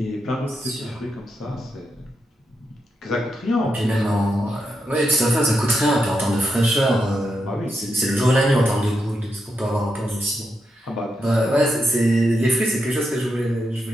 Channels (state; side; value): normal; both; correlation 0.84